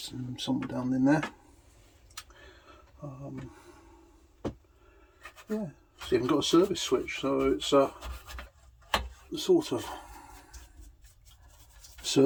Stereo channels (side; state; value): both; identical; correlation 1.00